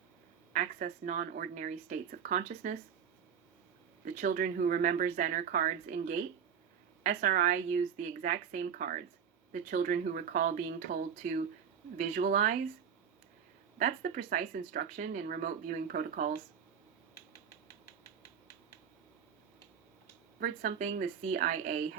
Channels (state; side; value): quieter; left; 7.6 dB